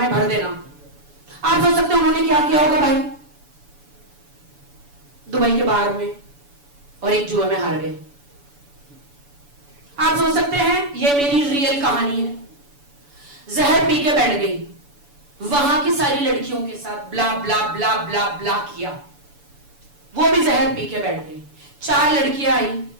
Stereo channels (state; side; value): late; left; 7.0 ms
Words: भर देना। आप सोच सकते हैं उन्होंने क्या किया होगा भाई दुबई के बाहर में, और एक जुए में हार गए। आप सोच सकते हैं ये मेरी रियल कहानी है। जहर पी के बैठ गई, वहां की सारी लड़कियों के साथ ब्ला ब्ला ब्ला ब्ला ब्ला किया, वो भी जहर पी के बैठ गई। 4 लड़कियां आई